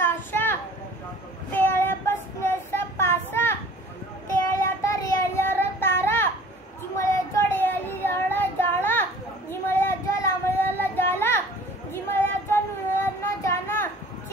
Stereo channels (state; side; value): normal; both; correlation 0.48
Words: पेड़े बसनेसा पासा तेड़े रेलिया तारा जिमले रेली जाला जिमले लामलियाला जाला जिमले नुनालियाना जाना